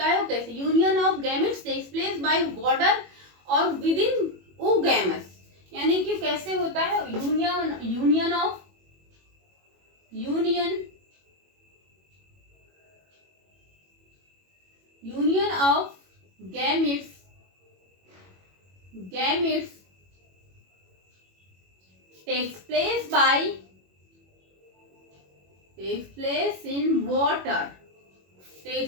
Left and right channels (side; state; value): left; late; 21 ms